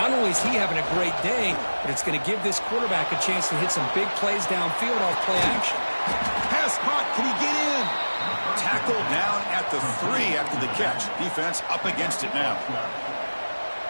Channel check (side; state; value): both; inverted; correlation -1.00